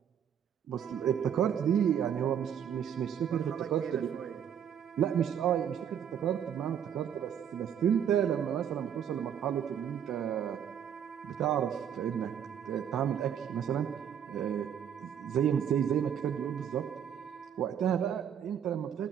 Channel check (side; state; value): left; quieter; 8.8 dB